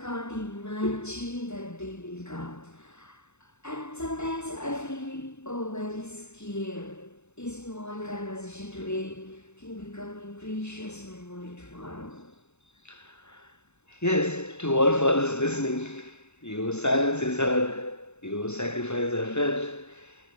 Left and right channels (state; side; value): late; right; 0.82 ms